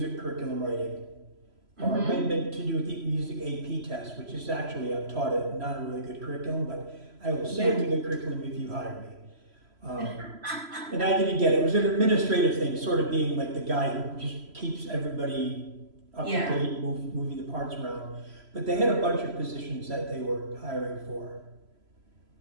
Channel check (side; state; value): left; late; 3.0 ms